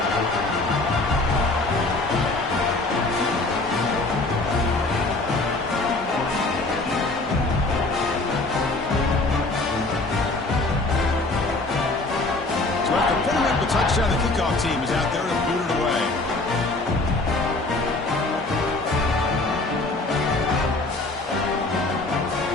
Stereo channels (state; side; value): quieter; right; 3.1 dB